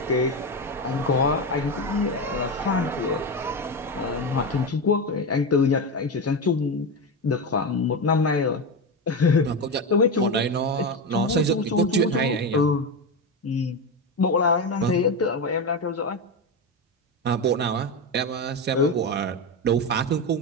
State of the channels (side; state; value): both; normal; correlation 0.16